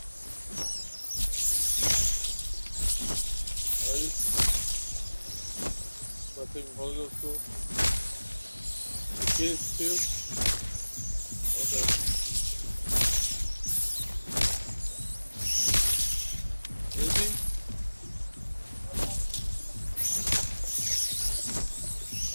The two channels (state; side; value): inverted; both; correlation -1.00